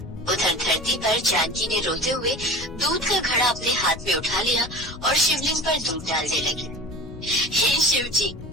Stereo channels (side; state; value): left; noise; rumble, 14 dB below the sound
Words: उधर धरती पर जानकी ने रोते हुए दूध का घड़ा अपने हाथ में उठा लिया और शिवलिंग पर दूध डालने लगी। हे शिव जी,